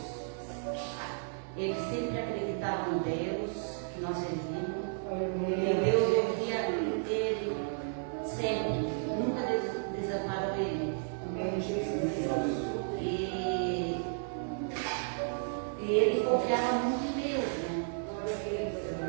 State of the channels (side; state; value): left; silent; 56 dB below the other